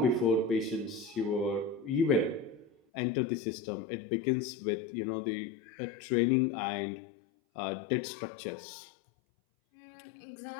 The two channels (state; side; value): drops out; right; at 2.8 s